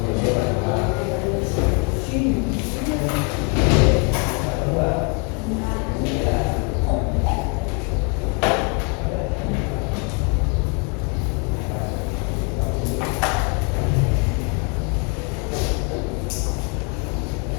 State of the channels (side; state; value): right; quieter; 35.6 dB